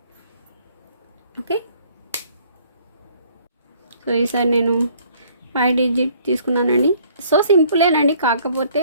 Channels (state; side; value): inverted; both; correlation -0.60